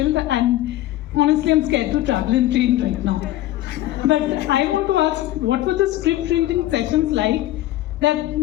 and honestly, I'm scared to travel in train right now. But I want to ask, what were the script reading sessions like that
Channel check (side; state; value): right; quieter; 14.9 dB